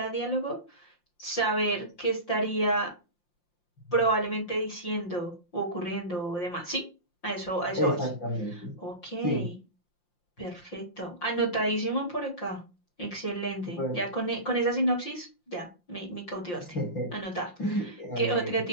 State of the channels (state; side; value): late; right; 5.7 ms